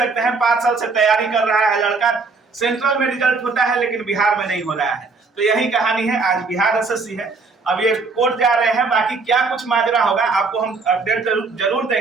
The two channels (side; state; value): left; quieter; 4.3 dB